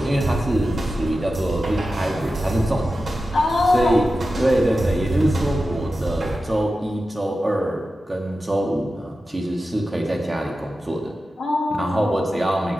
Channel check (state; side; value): normal; both; correlation 0.93